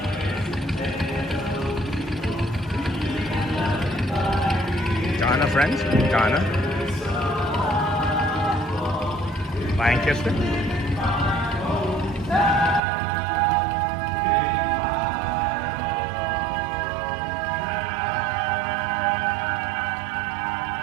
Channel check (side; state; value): left; drops out; at 12.8 s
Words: Donna, friends? Donna? Lancaster?